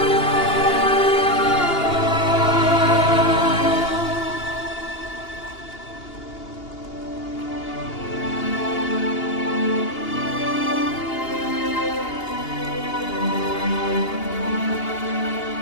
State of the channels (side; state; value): right; late; 2.8 ms